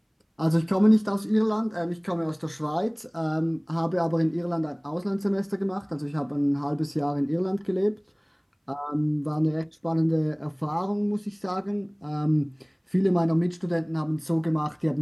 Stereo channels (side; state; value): both; identical; correlation 1.00